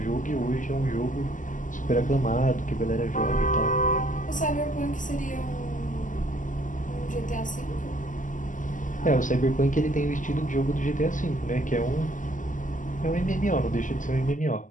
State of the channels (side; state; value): right; late; 0.37 ms